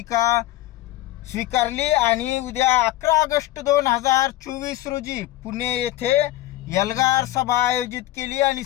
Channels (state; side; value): quieter; right; 15.6 dB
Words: स्वीकारली आणि उद्या 11 ऑगस्ट 2024 रोजी पुणे येथे एल्गार सभा आयोजित केली आणि